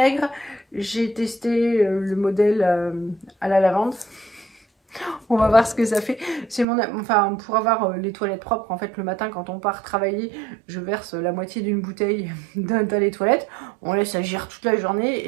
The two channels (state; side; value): drops out; left; at 6.7 s